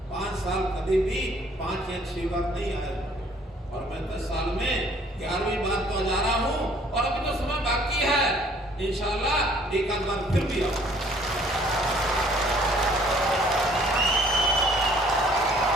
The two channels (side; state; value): both; normal; correlation 0.58